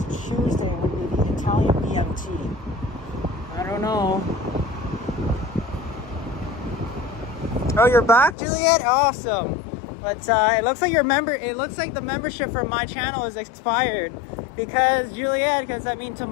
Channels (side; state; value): right; drops out; at 8.3 s